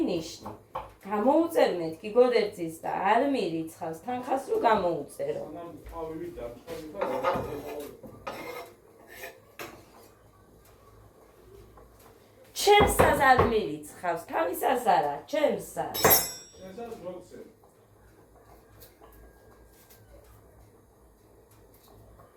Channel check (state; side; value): identical; both; correlation 1.00